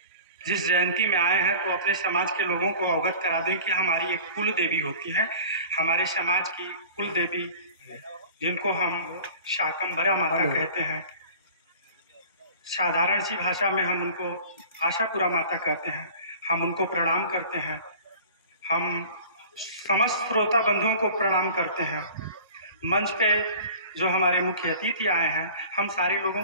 जिस जयंती में आए हैं तो अपने समाज के लोगों को अवगत करा दें कि हमारी एक कुल देवी होती है। हमारे समाज की कुल देवी जिनको हम शाकंभरा माता कहते हैं, साधारण सी भाषा में हम उनको आशापुरा माता कहते हैं। हम उनको प्रणाम करते हैं। हम समस्त श्रोता बंधुओं को प्रणाम करते हैं। मंच पे जो हमारे मुख्य अतिथि आए हैं, हम सारे लोगों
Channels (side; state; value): both; inverted; correlation -0.43